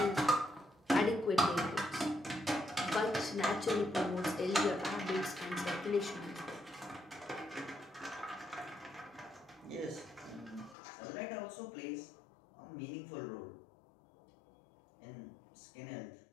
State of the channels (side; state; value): right; drops out; at 10.8 s